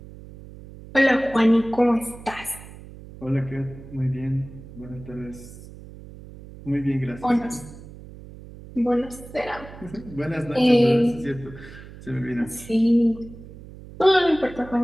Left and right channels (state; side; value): noise; right; hum, 17 dB below the sound